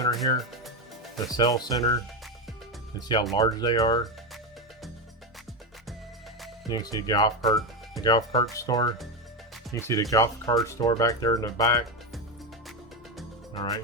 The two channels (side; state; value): both; normal; correlation 0.12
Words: here. The Cell Center. You can see how large they are. You can see the golf cart store. You can see the golf cart store back there in the back. Alright,